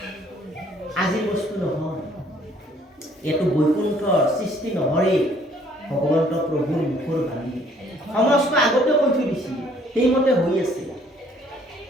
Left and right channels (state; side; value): normal; both; correlation 0.61